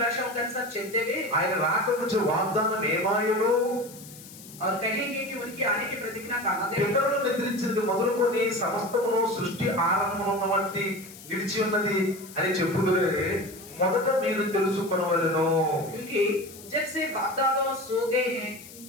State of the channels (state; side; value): noise; left; hiss, 17 dB below the sound